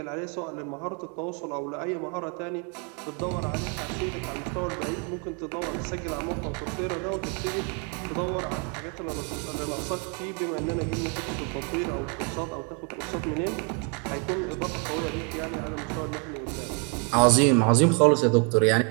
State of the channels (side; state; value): left; quieter; 36.6 dB